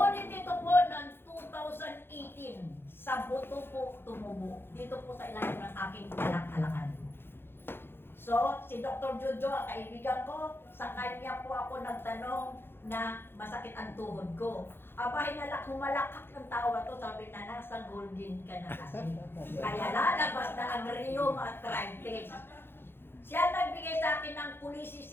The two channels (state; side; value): late; right; 0.11 ms